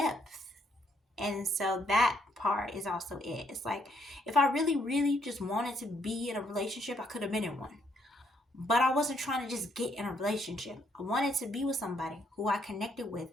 And so that part is also it. It's like, if I really, really just wanted to be in a relationship, I could have been in one. But I wasn't trying to just get in a relationship. I wanted to be with somebody who I connected with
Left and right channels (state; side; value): normal; both; correlation 0.72